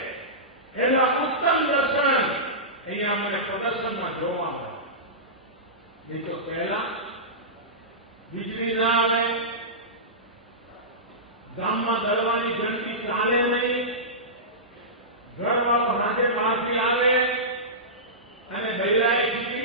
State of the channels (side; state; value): both; normal; correlation -0.17